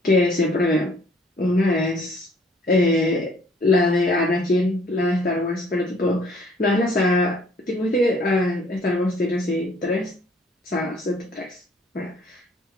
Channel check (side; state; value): both; normal; correlation 0.59